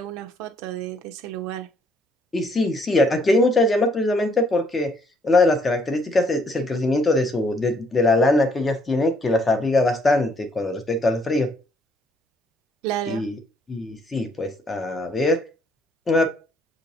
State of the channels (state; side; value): normal; both; correlation 0.67